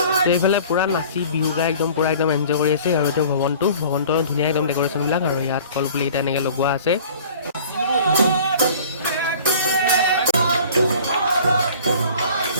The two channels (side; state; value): both; inverted; correlation -0.47